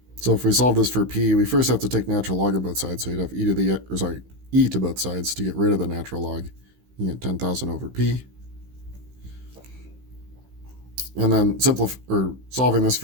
So if we solve this for p, we first have to take natural log of both sides. So you'd have e to both sides to get rid of the natural log. You get 10,000 over p. And then solving this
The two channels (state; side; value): late; left; 16 ms